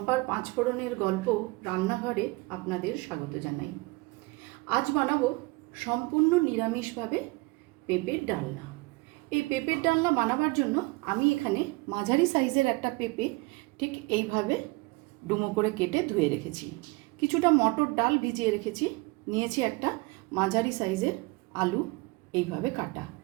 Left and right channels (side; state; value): left; quieter; 24.9 dB